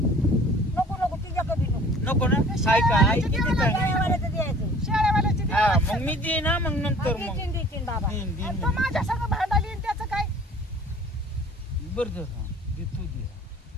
नको तुझ्याकडे नको नको ना काय का आई किती काय शेळ्यावाल्याचं द्यायचं शेळ्यावाल्याची हा देवाला मग मी देईन ना मग नंतर मग देतीन देतीन बाबा देईन आणि देईन तो माझ्या संग भांडाली आणि त्याचं काय बरं जर हा देतो दे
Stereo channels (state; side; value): normal; both; correlation 0.49